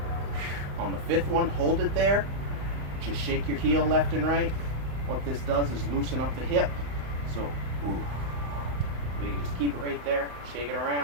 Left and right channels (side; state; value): left; late; 35 ms